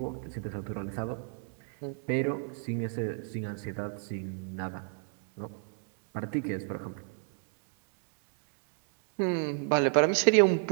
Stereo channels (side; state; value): left; silent; 56 dB below the other